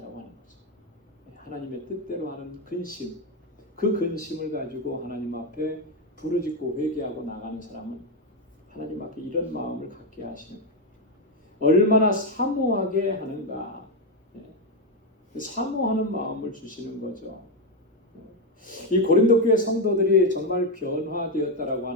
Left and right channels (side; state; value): both; normal; correlation 0.06